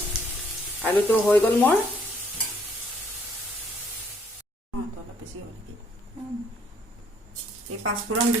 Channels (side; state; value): both; normal; correlation 0.65